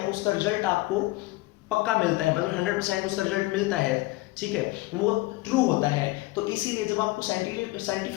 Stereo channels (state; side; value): quieter; right; 20.7 dB